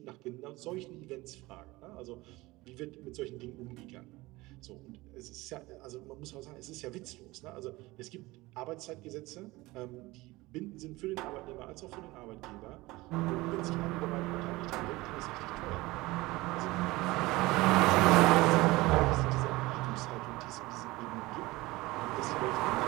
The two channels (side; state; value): left; quieter; 20.5 dB